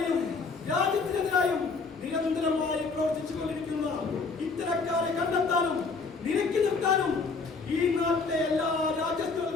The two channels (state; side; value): quieter; right; 4.4 dB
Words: രാജ്യത്തിനെതിരായും നിരന്തരമായി പ്രവർത്തിച്ചുകൊണ്ടിരിക്കുന്ന ഇത്തരക്കാരെ കണ്ടെത്താനും നിരക്കി നിർത്താനും ഈ നാട്ടിലെ എല്ലാ